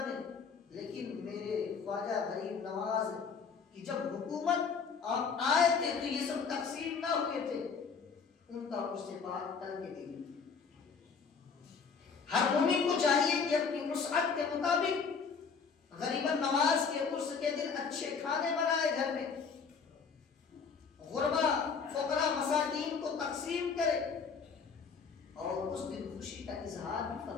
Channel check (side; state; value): right; quieter; 5.6 dB